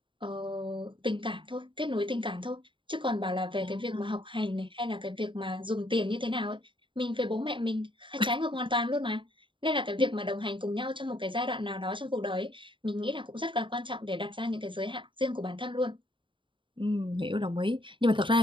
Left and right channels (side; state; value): left; late; 0.24 ms